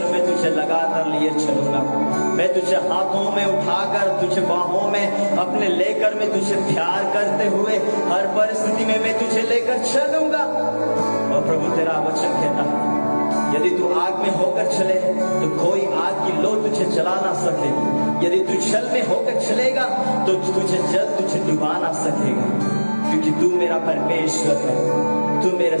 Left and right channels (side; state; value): both; inverted; correlation -1.00